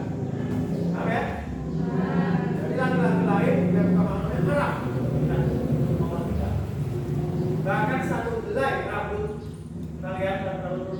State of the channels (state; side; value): identical; both; correlation 1.00